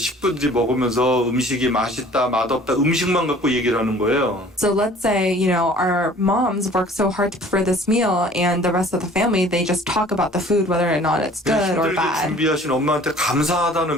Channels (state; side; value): normal; both; correlation 0.50